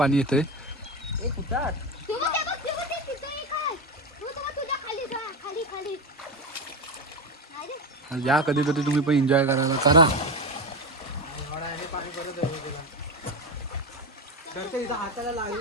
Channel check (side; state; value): both; normal; correlation 0.17